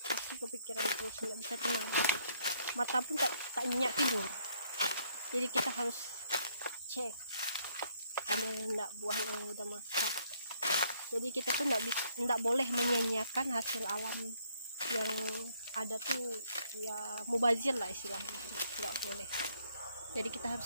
pasti kepikiran terus, nggak bisa tenang, mata pun tak nyenyak tidur. Jadi kita harus cek ada enggak buah yang udah masak. Jadi kita tuh enggak boleh menyanyiakan hasil alam yang ada tuh, ya mubazir lah istilahnya, nggak boleh. Jadi kita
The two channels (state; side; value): inverted; both; correlation -0.68